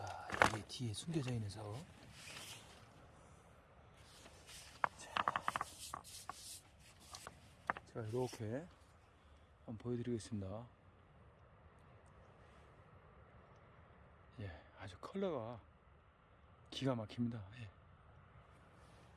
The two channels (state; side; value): identical; both; correlation 1.00